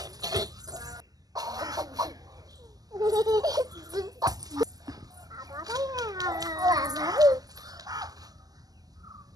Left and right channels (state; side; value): late; left; 0.18 ms